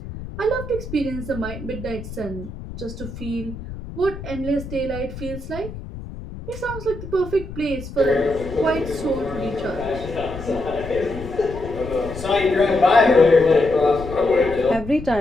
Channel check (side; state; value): left; noise; rumble, 11 dB below the sound